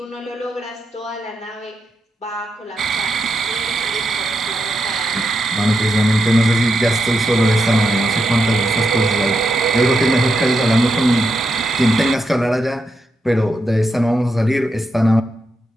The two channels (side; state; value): both; normal; correlation 0.84